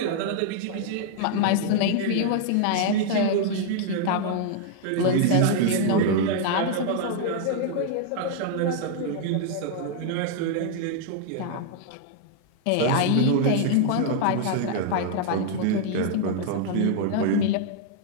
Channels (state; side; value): different; both; correlation -0.01